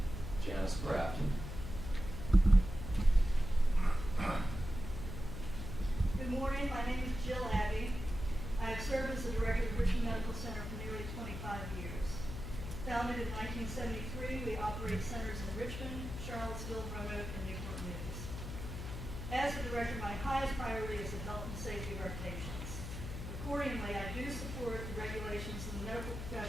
Janice Kraft. Good Good morning, my name is Jill Abbey. I have served as the director of Richmond Medical Center for nearly 25 years. Founded in 1973, we operate centers in Richmond, Charlottesville, Roanoke, and Newport News. As the director, my highest priority is the health and safety of our patients. Accordingly, I do support the regulations in the medical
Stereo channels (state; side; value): noise; left; hum, 7 dB below the sound